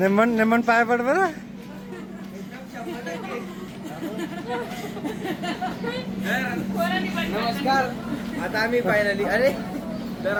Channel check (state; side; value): identical; both; correlation 1.00